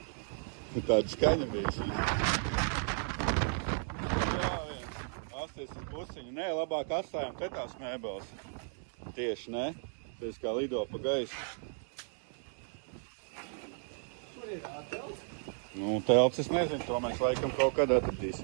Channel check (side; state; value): left; silent; 55 dB below the other